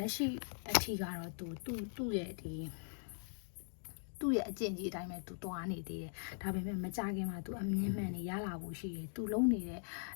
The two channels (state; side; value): silent; right; digital silence